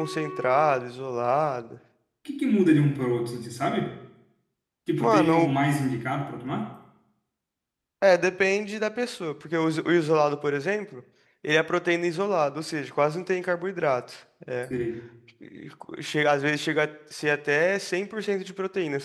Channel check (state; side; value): identical; both; correlation 1.00